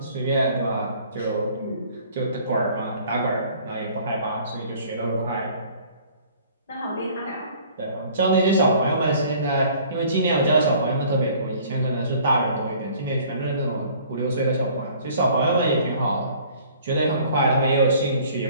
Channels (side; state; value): both; inverted; correlation -0.53